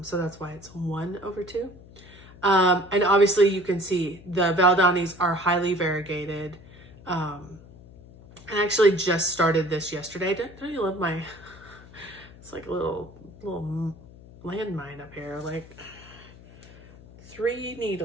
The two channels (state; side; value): noise; left; hum, 20 dB below the sound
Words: So that's why it's 1 over 2. And obviously you can see the Valdanis are highly variegated. I actually just started this yesterday. Don't you love my, it's like a little landmine up here, like 3